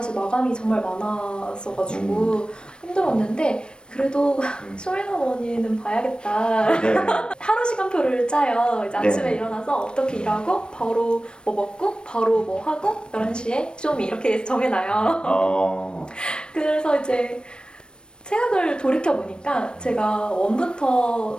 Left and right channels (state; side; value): late; right; 0.053 ms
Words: 마감이 정말 많았어가지고 힘들었는데 그래도 쇼미더머니는 봐야겠다. 네. 하루 시간표를 짜요. 이제 아침에 네. 일어나서 어떻게 일하고 바로 뭐 먹고 바로 뭐 하고 11시에 쇼미 이렇게 정해놔요. 그래서 이제 생각을 돌이켜보니까 제가